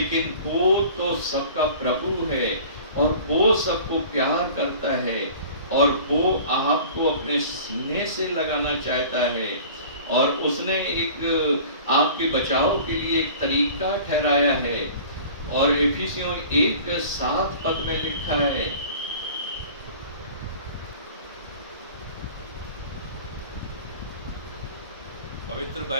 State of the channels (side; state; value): both; inverted; correlation -0.44